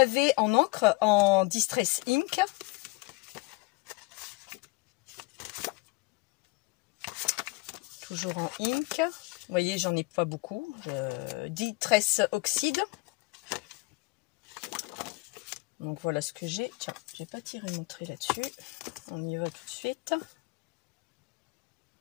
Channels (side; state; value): right; quieter; 25.6 dB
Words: en encre, en Distress Ink. Toujours en ink. Vous voyez, j'en ai pas beaucoup. Distress Oxyde. Donc voilà ce que j'ai. Tiens, j'ai pas tiré mon trait là-dessus. On y va tout de suite.